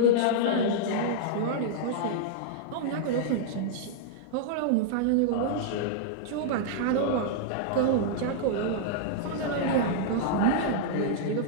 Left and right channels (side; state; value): both; different; correlation -0.02